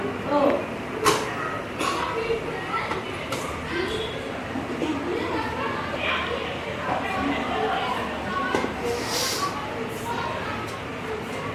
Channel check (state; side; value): identical; both; correlation 1.00